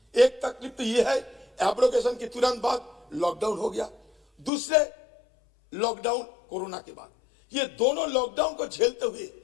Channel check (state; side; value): drops out; right; at 4.5 s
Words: एक तकलीफ तो ये है, एब्रोगेशन के तुरंत बाद लॉकडाउन हो गया, दूसरे लॉकडाउन कोरोना के बाद। ये दोनों लॉकडाउन को झेलते हुए